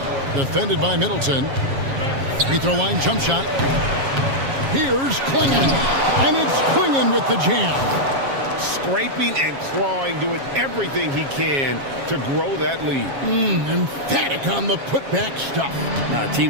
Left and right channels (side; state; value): left; late; 7.3 ms